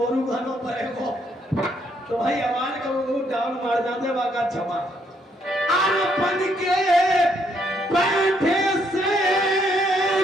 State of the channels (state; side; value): normal; both; correlation 0.72